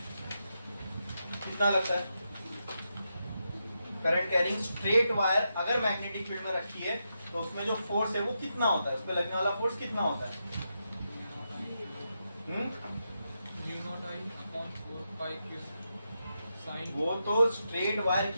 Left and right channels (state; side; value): inverted; both; correlation -0.85